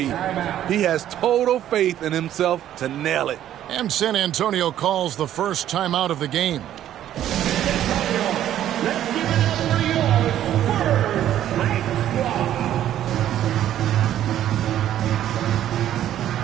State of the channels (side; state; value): left; quieter; 11.6 dB